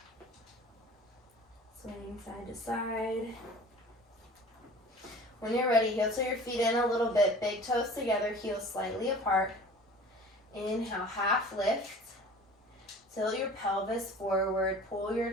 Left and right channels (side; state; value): both; normal; correlation 0.43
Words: Swinging side to side. When you're ready, heel to your feet in a little bit, big toes together, heels slightly apart. Inhale, half lift. Tilt your pelvis forward, pull your